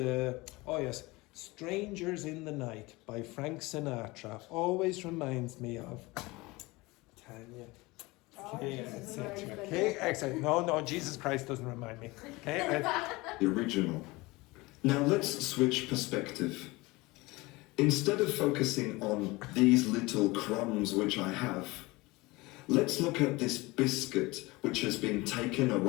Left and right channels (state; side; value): quieter; right; 22.4 dB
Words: oh yes, "Strangers in the Night" by Frank Sinatra always reminds me of Tanya. Okay, etc. Okay, excellent. No, Jesus Christ doesn't remind me. Okay. the original. Now let's switch perspective. Instead of focusing on these little crumbs which I have, let's look at this biscuit which has been taken